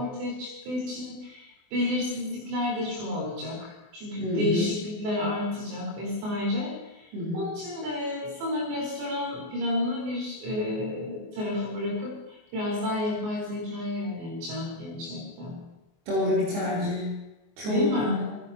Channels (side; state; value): left; late; 24 ms